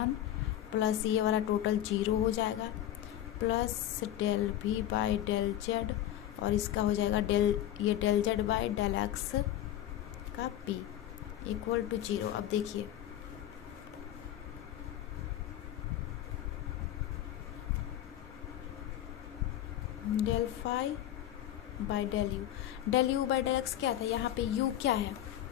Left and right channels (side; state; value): right; quieter; 12.3 dB